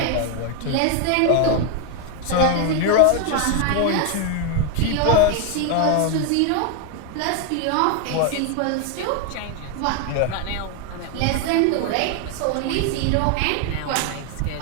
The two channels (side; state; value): both; different; correlation 0.01